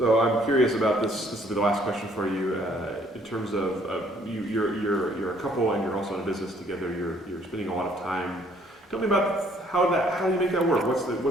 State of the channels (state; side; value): normal; both; correlation 0.62